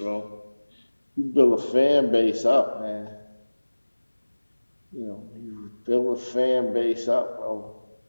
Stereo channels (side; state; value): both; inverted; correlation -1.00